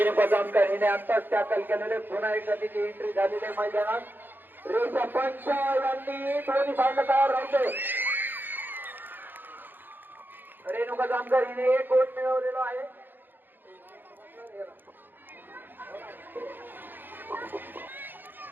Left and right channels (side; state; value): left; late; 0.093 ms